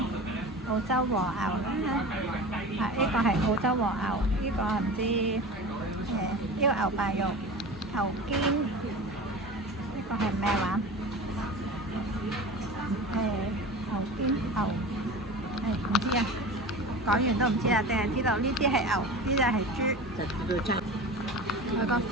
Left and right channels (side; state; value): both; normal; correlation 0.33